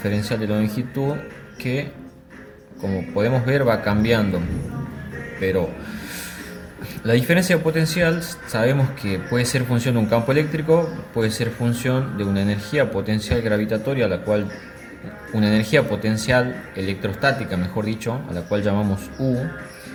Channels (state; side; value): identical; both; correlation 1.00